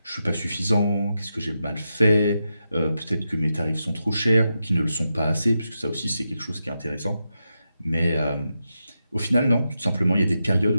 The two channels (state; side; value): inverted; both; correlation -0.87